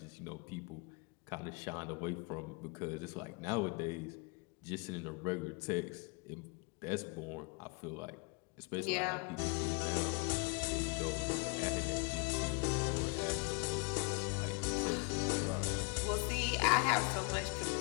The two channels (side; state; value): right; quieter; 32.9 dB